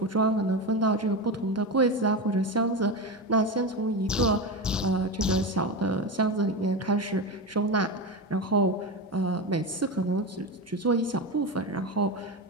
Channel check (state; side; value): normal; both; correlation 0.18